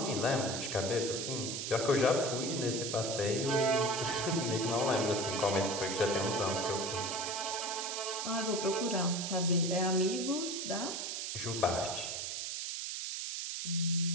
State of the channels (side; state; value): right; noise; hiss, 3 dB below the sound